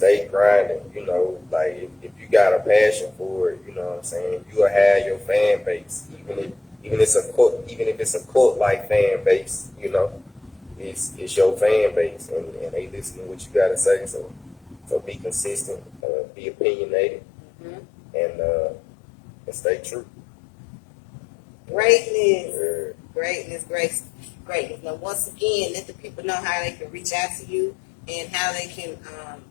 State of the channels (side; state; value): right; drops out; at 16.0 s